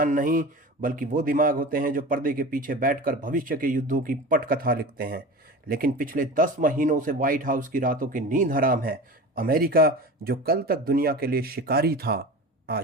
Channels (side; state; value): both; normal; correlation 0.33